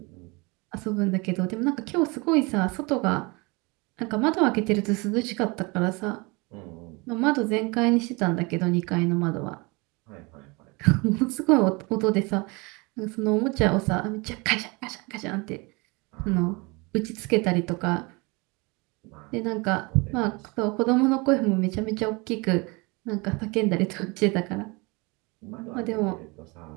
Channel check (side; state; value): left; quieter; 27.1 dB